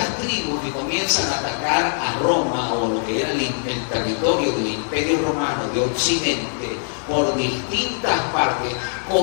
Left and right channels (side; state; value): right; silent; digital silence